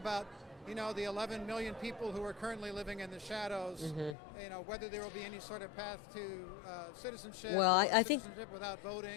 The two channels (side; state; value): right; drops out; at 4.2 s